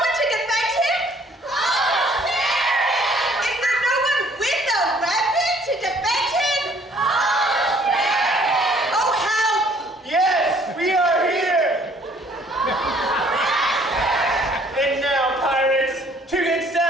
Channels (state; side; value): normal; both; correlation 0.60